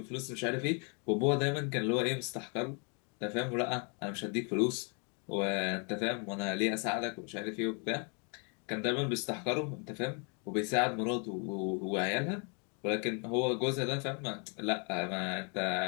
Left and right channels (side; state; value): right; quieter; 36.6 dB